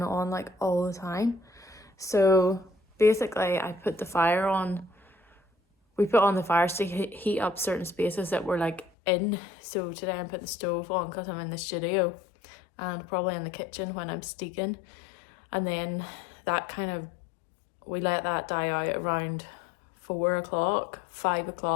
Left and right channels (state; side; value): drops out; right; at 8.9 s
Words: it on like all the time. So basically I put the fire on, we put on the fire to heat up certain spaces that we're like in. So today I put the stove on because I'm in the studio, and probably in the kitchen when I'm steeking. And then that kind of, we let that die out around 4 o'clock, 5